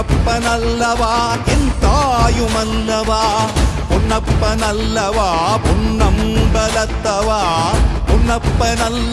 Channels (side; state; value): both; identical; correlation 1.00